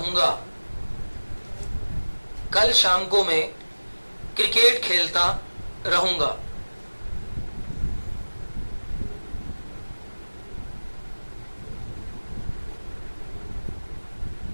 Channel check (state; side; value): inverted; both; correlation -1.00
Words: कल शाम को मैं क्रिकेट खेलता रहूंगा।